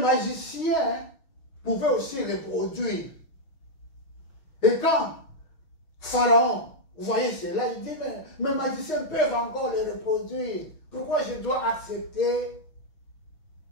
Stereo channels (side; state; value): right; late; 6.4 ms